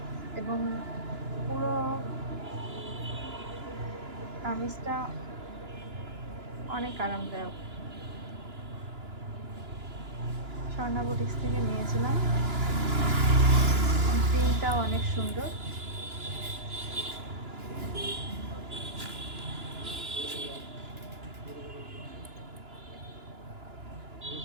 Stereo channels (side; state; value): left; late; 2.9 ms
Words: এবং পুরো কামিজটা অনেক আরামদায়ক। স্বর্ণা বুটিক্স থেকে নিয়েছিলাম। প্রিন্টটাও অনেক সুন্দর।